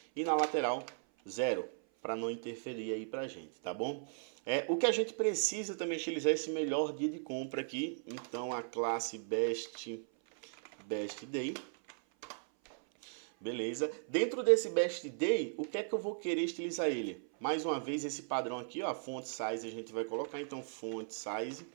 e na lateral 0, para não interferir aí pra gente, tá bom? O que a gente precisa também utilizar esse melhor dia de compra aqui. Então a classe best day. Beleza? Dentro desse best day, o que é que eu vou querer estilizar ele? Mais uma vez esse padrão aqui, ó, font size a gente vai colocar. Então font size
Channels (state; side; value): silent; left; 53 dB below the other